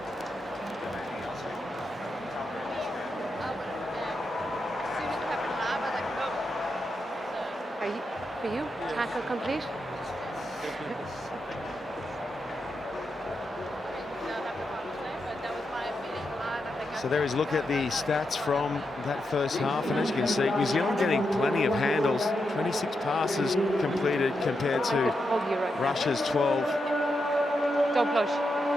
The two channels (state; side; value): normal; both; correlation 0.85